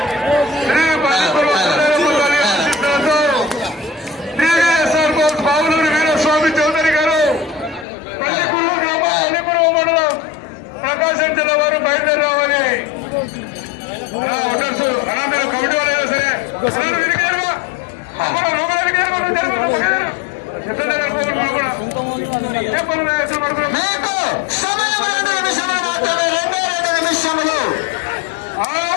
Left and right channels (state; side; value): drops out; right; at 7.9 s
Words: బావులూరు వీరస్వామి చౌదరి గారు, పల్లికూరు గ్రామం, పల్లికూరు మండలం, ప్రకాశం జిల్లా వారు బయలుదేరి రావాలి. ఓటర్స్ అలా మీరు కమిటీ వాళ్ళైనా సరే మీకు సమయం 2 నిమిషములు మాత్రమే. 2 నిమిషములు.